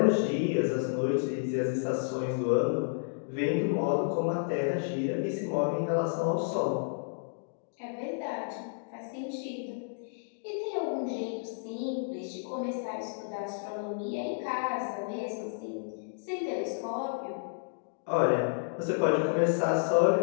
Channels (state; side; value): silent; right; digital silence